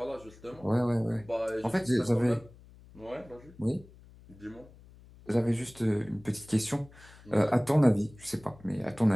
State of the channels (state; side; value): noise; left; hum, 22 dB below the sound